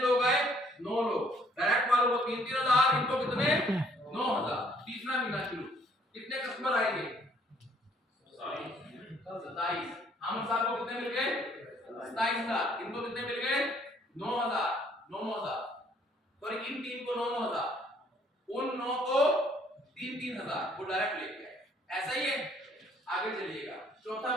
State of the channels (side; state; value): both; normal; correlation 0.63